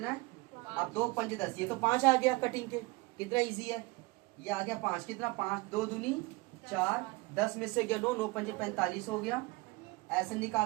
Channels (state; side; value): quieter; left; 23.2 dB